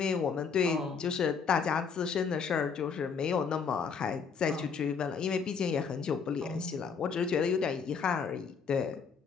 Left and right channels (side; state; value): right; quieter; 5.9 dB